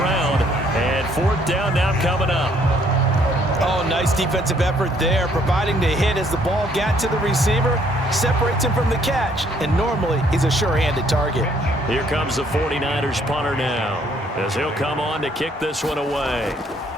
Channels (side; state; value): both; normal; correlation 0.65